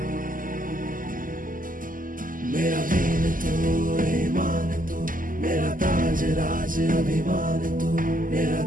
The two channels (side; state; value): left; late; 0.40 ms